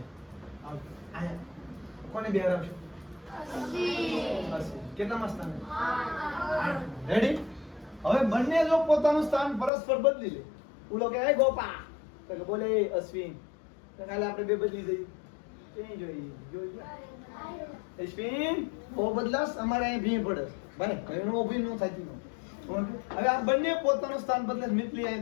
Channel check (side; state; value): right; drops out; at 9.7 s